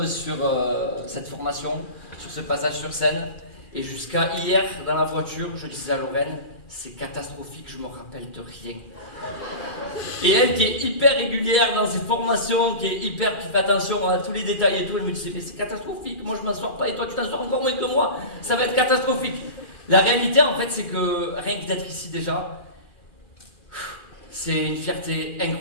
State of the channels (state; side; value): late; right; 2.4 ms